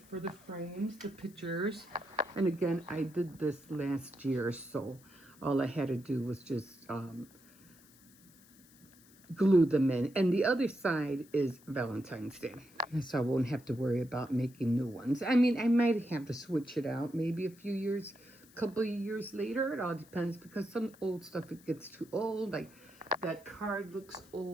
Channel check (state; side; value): noise; left; hiss, 26 dB below the sound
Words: the frames, the pictures. And again, I did this last year, so all I had to do was just glue them in. And the other side is Valentine's Day, so I won't have to worry about making new ones. I mean, I might have to switch it out maybe a few years, couple of years later. It all depends, because some old stuff, it gets too old. Like that card looks